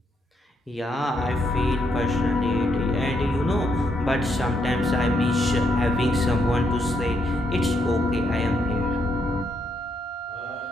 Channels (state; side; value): normal; both; correlation 0.76